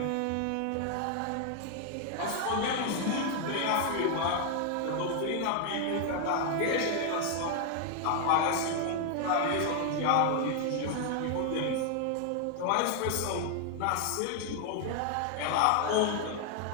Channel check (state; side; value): different; both; correlation 0.00